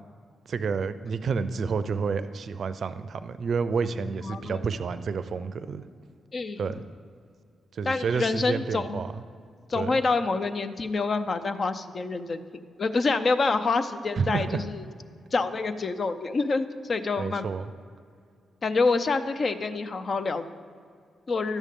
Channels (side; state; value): both; normal; correlation 0.85